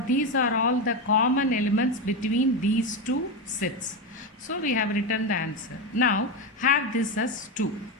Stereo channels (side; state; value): both; normal; correlation 0.13